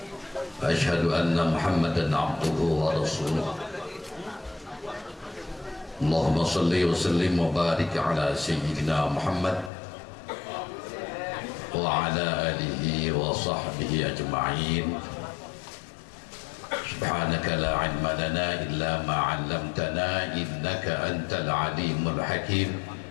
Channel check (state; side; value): drops out; right; at 9.7 s